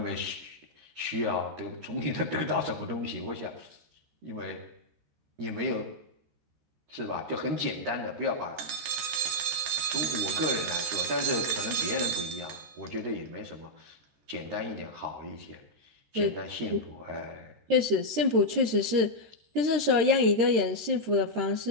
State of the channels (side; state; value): left; late; 14 ms